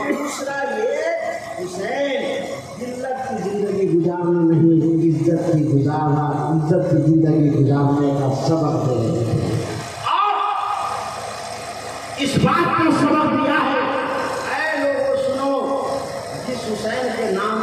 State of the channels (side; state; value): both; identical; correlation 1.00